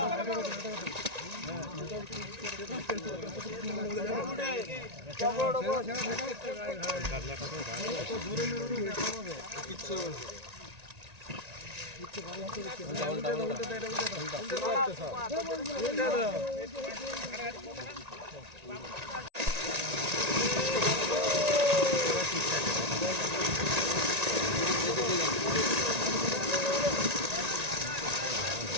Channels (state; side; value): late; left; 1.9 ms